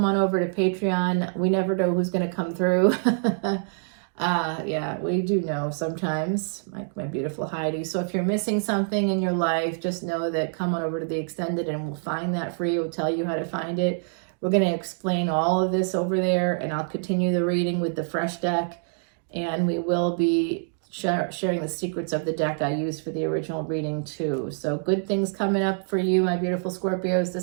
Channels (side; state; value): left; silent; digital silence